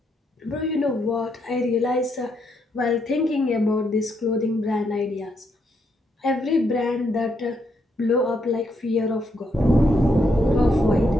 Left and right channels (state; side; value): normal; both; correlation 0.77